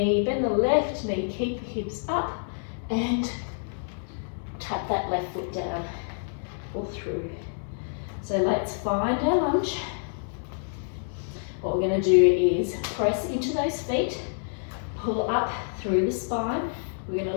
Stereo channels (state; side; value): silent; right; digital silence